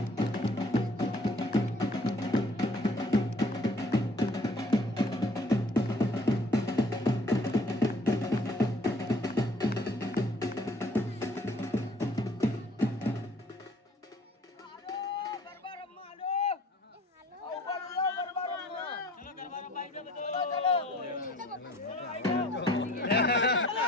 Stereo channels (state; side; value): normal; both; correlation 0.55